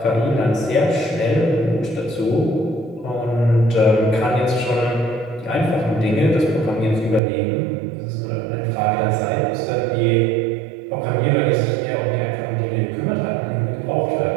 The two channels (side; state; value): left; drops out; at 7.2 s